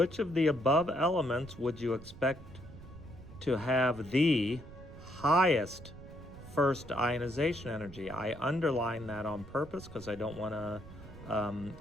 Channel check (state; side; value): noise; right; rumble, 16 dB below the sound